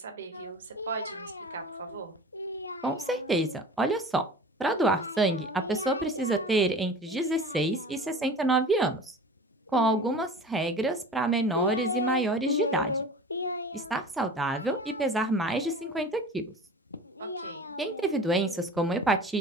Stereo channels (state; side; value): normal; both; correlation 0.38